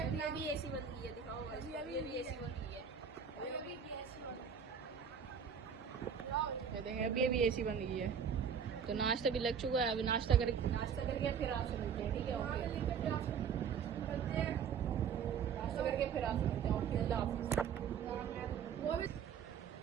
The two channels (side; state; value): left; quieter; 7.2 dB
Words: अभी भी एसी बंद की है, दिखाओ भाई। अभी भी एसी बंद की है, अभी भी ऐसी देखें अभी भी एसी बंद की है। तो नाश्ता भी लग चुका है, अभी नाश्ता करके फिर आपसे मिलते हैं, ठीक है? नाश्ता करके फिर आपसे मिलते हैं। ओके, अल्लाह हाफ़िज़।